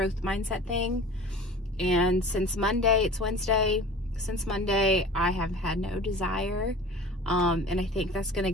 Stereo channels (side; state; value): both; normal; correlation 0.40